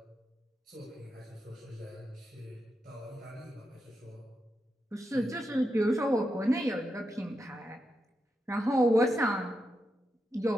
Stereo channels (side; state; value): both; normal; correlation 0.86